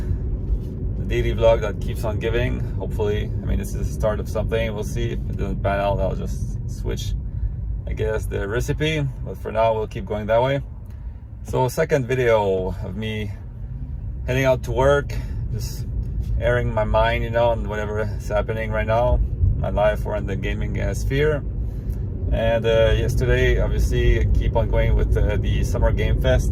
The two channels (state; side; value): identical; both; correlation 1.00